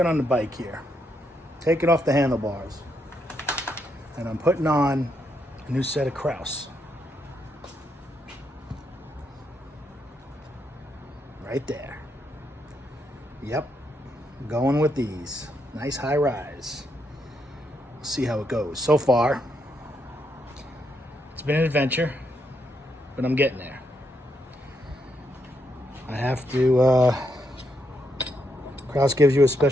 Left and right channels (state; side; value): normal; both; correlation 0.79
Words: on the bike here, taking off the handlebars, and I'm putting on a new set of Kraus. Right there. Yep, going with these. Nice high rise. We'll see how it goes. So far, it's been an adventure, but I'm getting there. I have to, Kraus gives you a